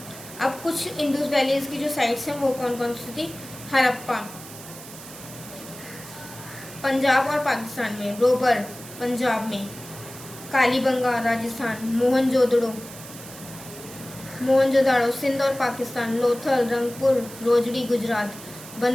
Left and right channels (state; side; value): noise; right; hiss, 15 dB below the sound